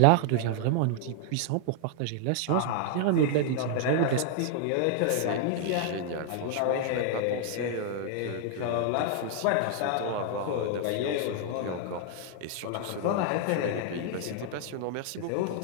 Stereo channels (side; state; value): both; different; correlation 0.00